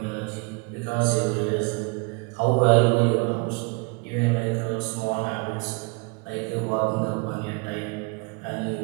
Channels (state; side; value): quieter; left; 29.8 dB